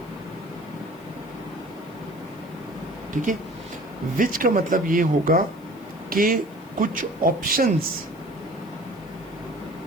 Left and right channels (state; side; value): noise; left; hiss, 28 dB below the sound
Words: ठीक है, विच का मतलब ये होगा कि कुछ ऑप्शंस